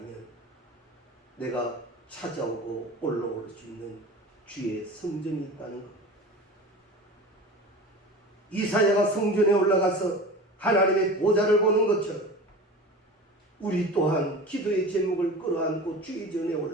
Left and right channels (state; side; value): normal; both; correlation 0.34